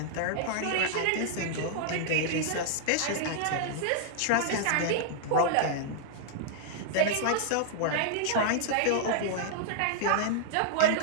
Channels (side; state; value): both; different; correlation -0.01